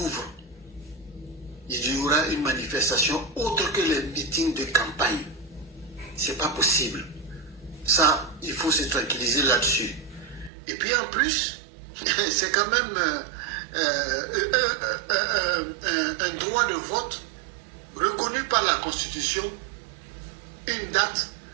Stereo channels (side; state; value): left; drops out; at 10.5 s